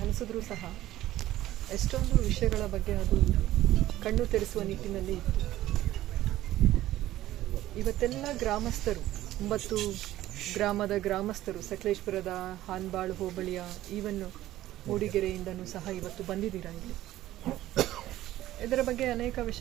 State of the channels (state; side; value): quieter; left; 14.6 dB